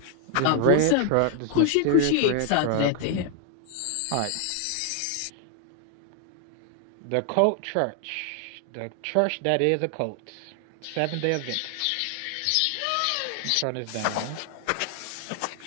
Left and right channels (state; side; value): different; both; correlation 0.00